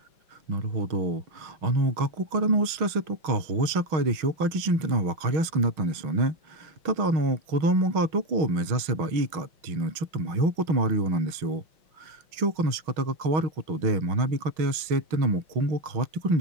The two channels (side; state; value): left; late; 6.3 ms